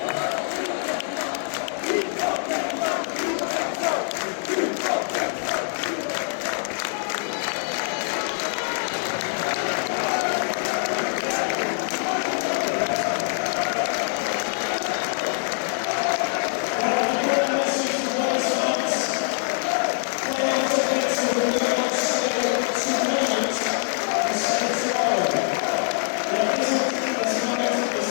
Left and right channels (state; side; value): silent; right; 62 dB below the other